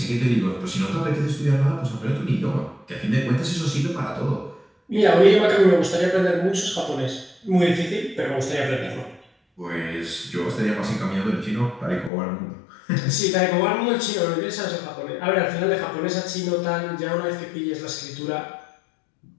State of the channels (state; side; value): drops out; right; at 12.1 s